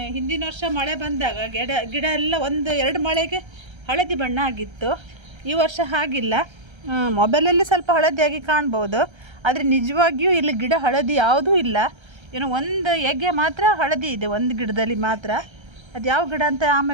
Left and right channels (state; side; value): late; left; 1.3 ms